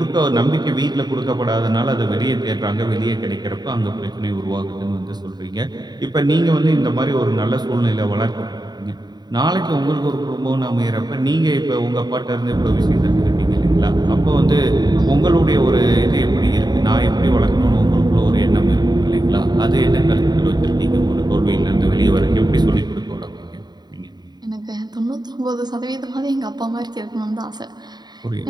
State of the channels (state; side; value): late; left; 0.20 ms